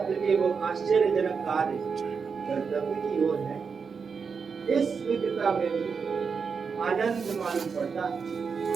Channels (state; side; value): quieter; left; 5.7 dB